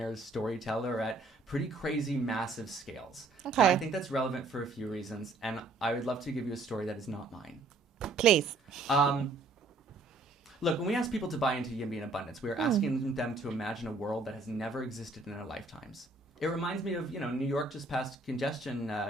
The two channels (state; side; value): quieter; left; 3.4 dB